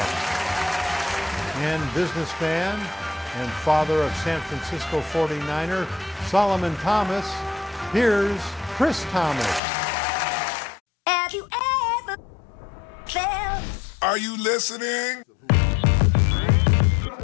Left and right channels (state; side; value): drops out; right; at 9.6 s